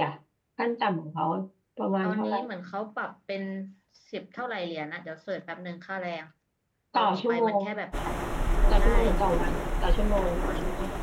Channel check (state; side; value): identical; both; correlation 1.00